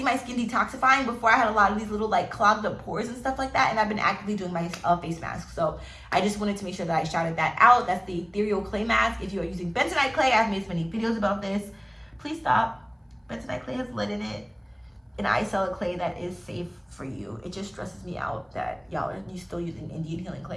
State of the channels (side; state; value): both; identical; correlation 1.00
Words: my skin detoxifying. Before, I had a lot of these little like clogged up pores and stuff like that, and I've been actively doing my face mask. So I just wanted to make sure that I shouted that out. That's the ethereal clay mask. If you are using bentonite clay, I've made so many videos about this. Please stop. Bentonite clay has lead in it, and I sell a clay that is safe for you. It just stresses me out that y'all are still using Indian healing